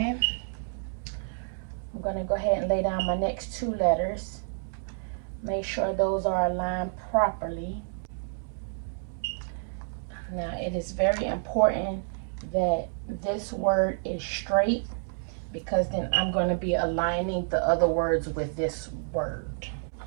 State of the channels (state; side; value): silent; left; digital silence